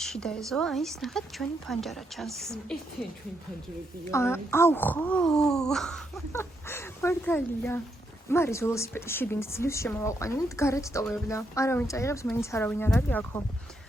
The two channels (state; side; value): normal; both; correlation 0.79